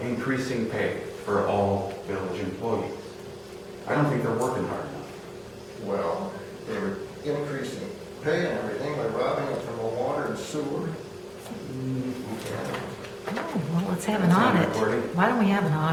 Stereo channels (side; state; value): both; identical; correlation 1.00